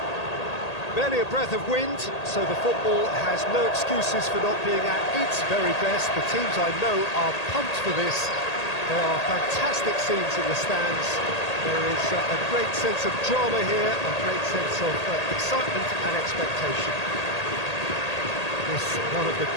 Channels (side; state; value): right; late; 1.8 ms